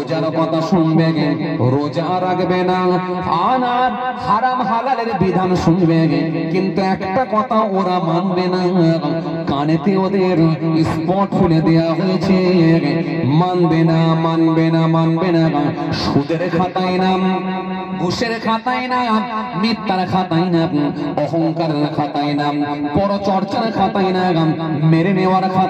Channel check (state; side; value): identical; both; correlation 1.00